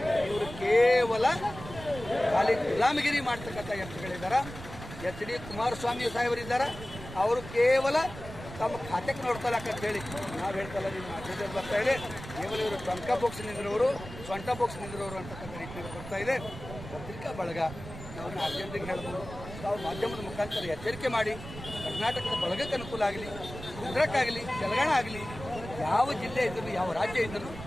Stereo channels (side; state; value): right; noise; rumble, 12 dB below the sound